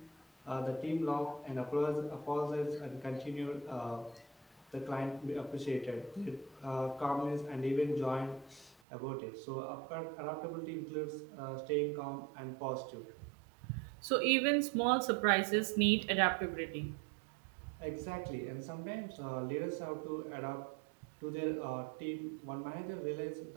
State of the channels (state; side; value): drops out; left; at 8.8 s